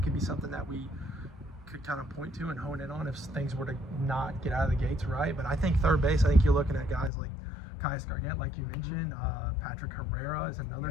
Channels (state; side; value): drops out; right; at 7.1 s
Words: could be something that we could kind of point to and hone in on if things were to not get out of the gates right. But I think third base, I think you're looking at guys like Caius Gargett, like you mentioned, Patrick Herrera is another